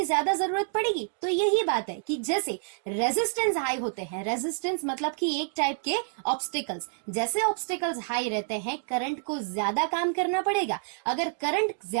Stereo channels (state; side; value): silent; left; digital silence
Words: ज्यादा जरूरत पड़ेगी। तो यही बात है कि जैसे रेजिस्टेंस हाई होते हैं, रेजिस्टेंस मतलब कि एक टाइप के ऑब्स्टिकल्स, जैसे ऑब्स्टिकल्स हाई रहते हैं करंट को ज्यादा काम करना पड़ेगा। अगर करंट